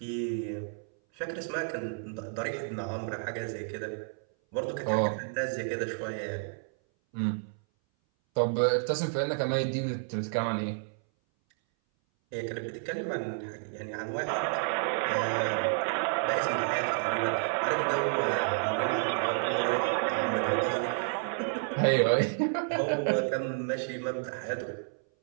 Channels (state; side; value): silent; left; 57 dB below the other